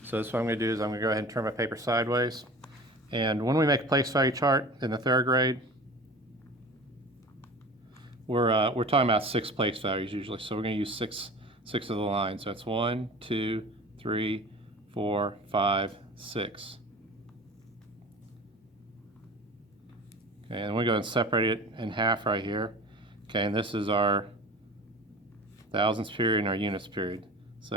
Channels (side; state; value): both; normal; correlation 0.38